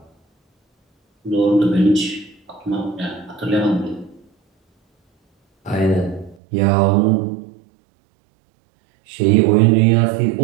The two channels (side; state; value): left; drops out; at 6.4 s